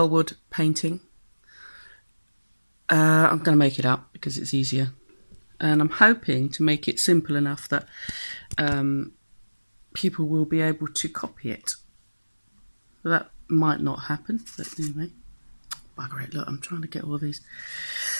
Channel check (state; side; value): inverted; both; correlation -1.00